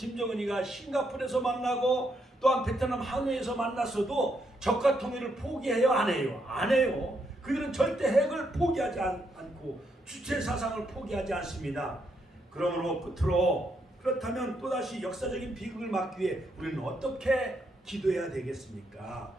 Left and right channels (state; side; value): normal; both; correlation 0.77